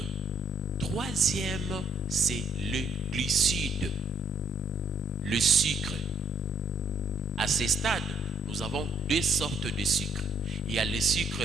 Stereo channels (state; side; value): normal; both; correlation 0.67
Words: Troisième, c'est le glucide, le sucre. À ce stade, nous avons deux sortes de sucre. Il y a le